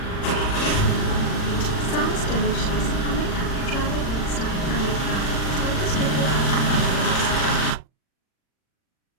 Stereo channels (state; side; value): late; right; 40 ms